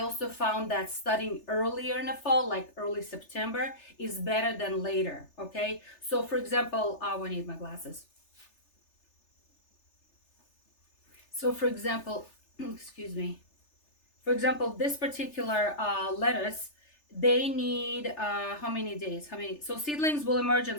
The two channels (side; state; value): right; late; 3.3 ms